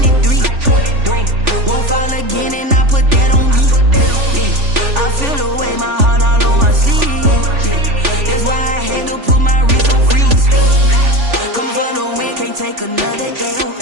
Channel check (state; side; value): late; left; 3.4 ms